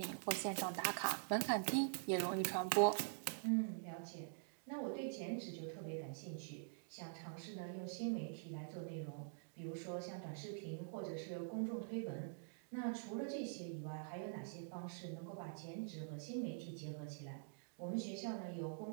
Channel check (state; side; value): silent; left; digital silence